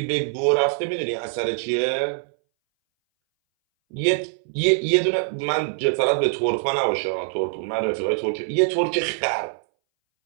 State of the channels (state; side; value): silent; left; 61 dB below the other